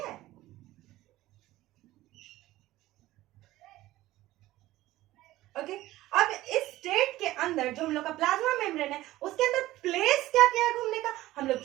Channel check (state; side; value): quieter; left; 16.4 dB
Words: ओके, अब इस स्टेट के अंदर जो हम लोग का प्लाज्मा मेम्ब्रेन है, उसके अंदर प्लेस क्या क्या है घूमने का, हम